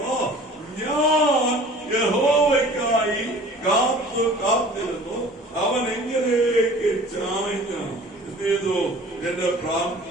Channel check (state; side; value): normal; both; correlation 0.46